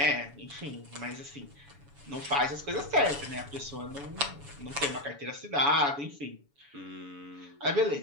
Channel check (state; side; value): late; left; 7.1 ms